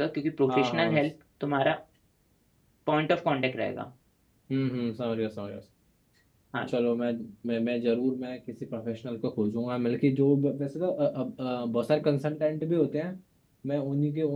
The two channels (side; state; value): both; identical; correlation 1.00